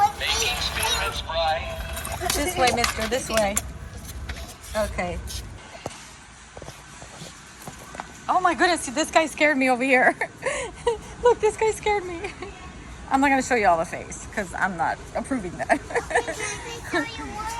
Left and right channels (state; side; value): identical; both; correlation 1.00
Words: making spirits bright. This way, mister. This way. Okay. Oh my goodness, this guy scared me over here. Look, this guy scared me. I'm not going to show you all the face because I'm not approving that. show you what